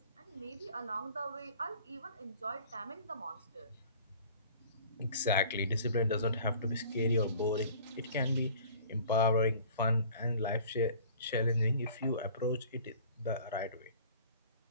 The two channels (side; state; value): both; inverted; correlation -0.49